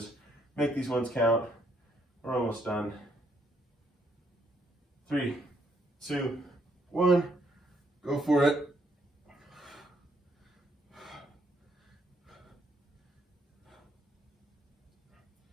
Make these ones count. We're almost done. 3, 2, 1. Go for it.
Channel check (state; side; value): normal; both; correlation 0.72